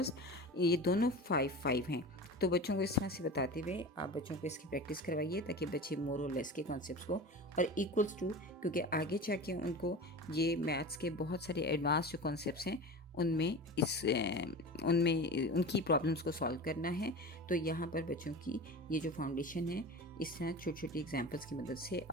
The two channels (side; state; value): both; normal; correlation 0.32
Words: ये दोनों 5 हैं. तो बच्चों को इस तरह से बताते हुए आप बच्चों को इसकी प्रैक्टिस करवाइए ताकि बच्चे मोर और लेस के कॉन्सेप्ट्स को और इक्वल्स टू, क्योंकि आगे जाके उनको ये मैथ्स के बहुत सारे एडवांस जो कॉन्सेप्ट्स हैं उनमें उनकी प्रॉब्लम्स को सॉल्व करना है. तो यहाँ पर बच्चों की ये जो फाउंडेशन है इस तरह छोटी छोटी एग्जांपल्स की मदद से